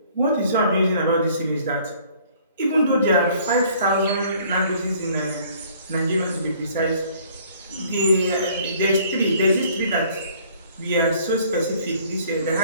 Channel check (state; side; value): inverted; both; correlation -0.57